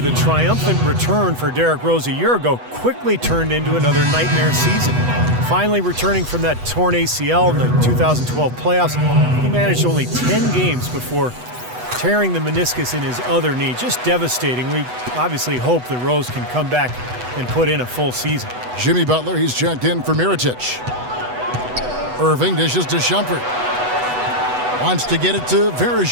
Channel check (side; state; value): left; late; 8.1 ms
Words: triumphant return for Derrick Rose a year ago quickly turned into another nightmare season. Finally returning from that torn ACL in the 2012 playoffs, he managed only 10 games before tearing the meniscus in his other knee. Just devastating. We obviously hope that Rose can come back and put in a full season. Jimmy Butler, he's checked in for Mirotic. Irving dishes to Shumpert. Wants to get it to